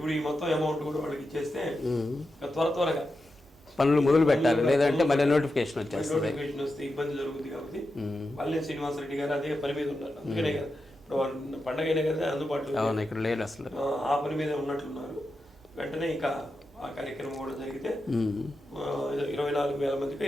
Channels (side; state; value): both; normal; correlation 0.89